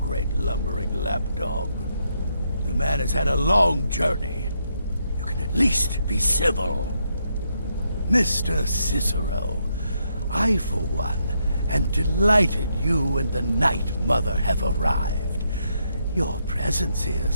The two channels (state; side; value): inverted; both; correlation -0.78